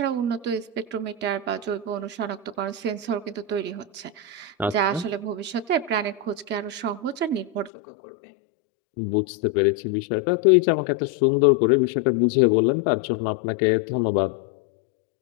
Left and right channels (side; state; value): right; drops out; at 7.7 s